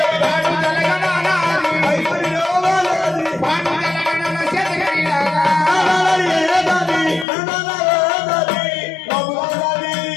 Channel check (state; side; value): drops out; right; at 7.2 s